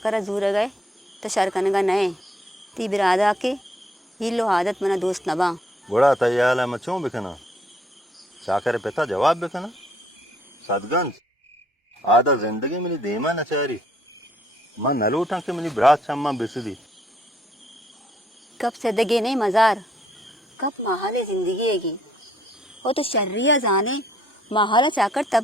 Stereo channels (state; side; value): normal; both; correlation 0.67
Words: जूर गए तो शरकनगा नये ती बिरादा के हिलो आदत मना दोस्त नबा बड़ा तैयार है मचों बिकना चाकर पिता जवाब बिकना सदगंज आधा जिंदगी मेरी देमा नचारी मां नलूटा के मेरी ब्रात शम्मा बिसदी कब सदगे नहीं मजार कब माहाले जिंदगी हैगी वो तो शर्रिया जाने माहाला चाकर तब